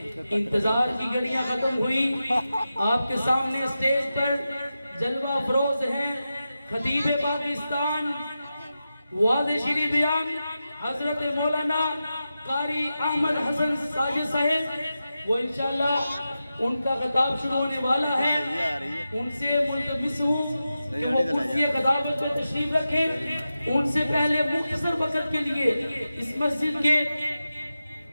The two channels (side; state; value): both; inverted; correlation -0.91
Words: انتظار کی گھڑیاں ختم ہوئی. آپ کے سامنے اسٹیج پر جلوہ افروز ہیں خطیب پاکستان واضح شیریں بیان حضرت مولانا قاری احمد حسن ساجد صاحب. وہ انشاءاللہ ان کا خطاب شروع ہونے والا ہے. ان سے ملتمس ہوں کہ وہ کرسی خطابت میں تشریف رکھیں. ان سے پہلے مختصر وقت کے لیے اس مسجد کے